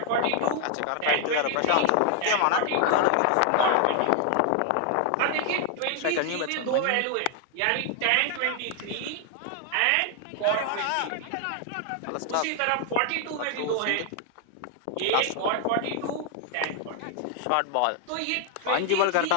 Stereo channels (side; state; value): both; different; correlation 0.00